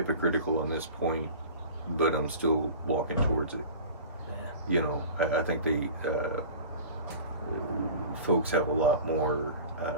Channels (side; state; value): both; inverted; correlation -0.40